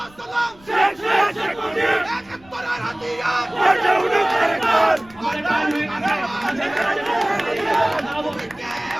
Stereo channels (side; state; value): left; noise; rumble, 26 dB below the sound